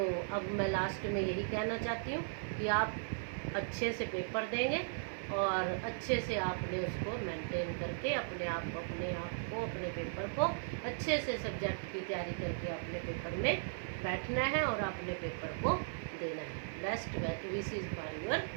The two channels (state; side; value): silent; left; 53 dB below the other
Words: अब मैं लास्ट में यही कहना चाहती हूँ कि आप अच्छे से पेपर देंगे, और अच्छे से आपने उसको मेंटेन करके अपने पेपर को अच्छे से सब्जेक्ट की तैयारी करके अपने पेपर में बैठना है और अपने पेपर को देना है। Best wishes for your